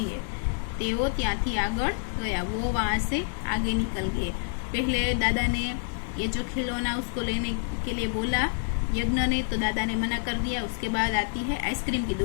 है। तेवो त्याथी आगळ गया, वो वहां से आगे निकल गए। पहले दादा ने ये जो खिलौना उसको लेने के लिए बोला यज्ञ ने, तो दादा ने मना कर दिया। उसके बाद आती है आइसक्रीम की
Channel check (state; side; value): silent; right; digital silence